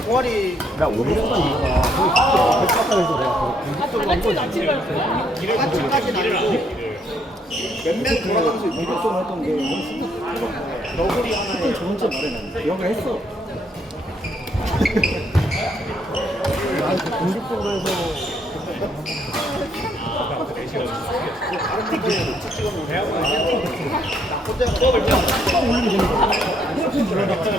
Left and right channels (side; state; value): both; normal; correlation 0.71